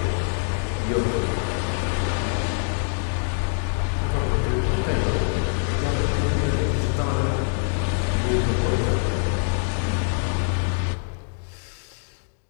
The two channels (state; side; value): silent; right; 62 dB below the other